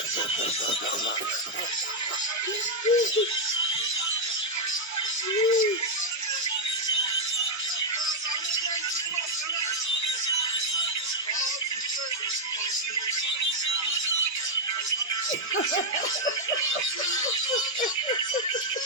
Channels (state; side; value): normal; both; correlation 0.00